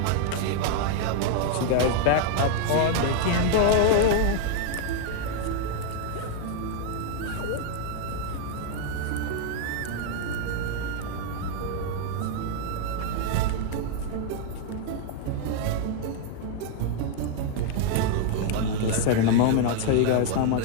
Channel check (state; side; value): different; both; correlation 0.00